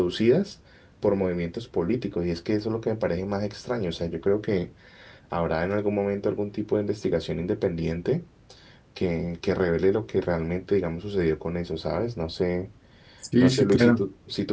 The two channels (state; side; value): identical; both; correlation 1.00